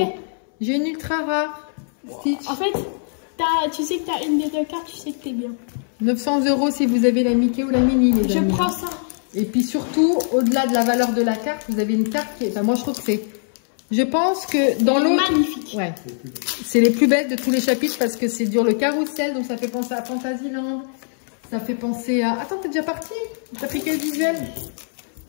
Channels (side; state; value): right; silent; 63 dB below the other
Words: J'ai une ultra rare. Stitch. En fait, tu sais que tu as une des deux cartes, tu sais que t'es bien. 900 euros si vous avez la Mickey ou la Mini, les amis. Je prends ça. Et puis surtout, au-delà de la valeur de la carte, vous avez une carte qui est... Enfin, moi, je trouve que c'est... Je pense que dans l'autre... Magnifique. Ouais. C'est les plus belles de tous les chapitres parce que c'est dur le carrousel, donc ça fait penser à Fantasyland. Ça fait penser à... Attends, t'es déjà parti? T'as pris quel visuel?